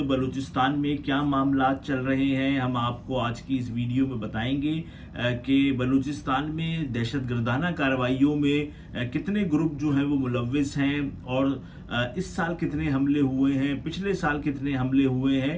बलूचिस्तान में क्या मामला चल रहे हैं। हम आपको आज की इस वीडियो में बताएंगे कि बलूचिस्तान में दहशतगर्दाना कार्रवाइयों में कितने ग्रुप जो हैं वो मुलव्विस हैं, और इस साल कितने हमले हुए हैं, पिछले साल कितने हमले हुए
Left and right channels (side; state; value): both; identical; correlation 1.00